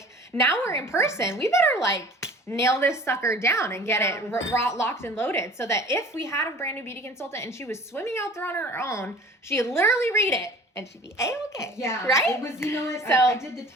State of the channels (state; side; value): normal; both; correlation 0.45